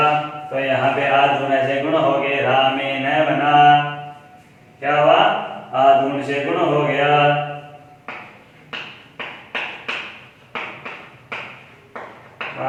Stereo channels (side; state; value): both; identical; correlation 1.00